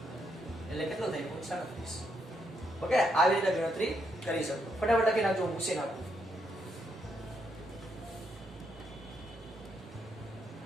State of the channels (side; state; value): both; normal; correlation 0.77